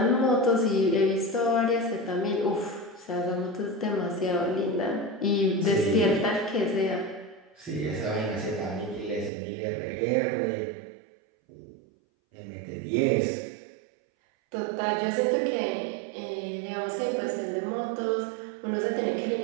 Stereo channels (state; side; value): drops out; left; at 9.3 s